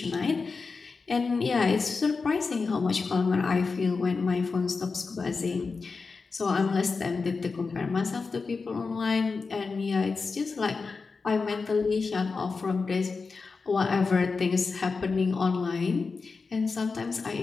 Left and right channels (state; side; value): quieter; right; 4.5 dB